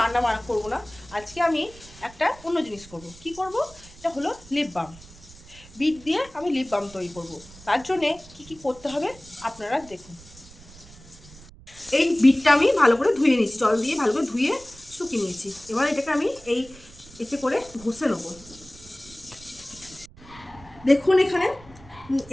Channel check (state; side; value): noise; right; rumble, 21 dB below the sound